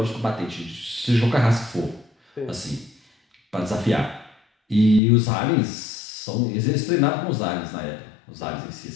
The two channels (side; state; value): right; drops out; at 5.0 s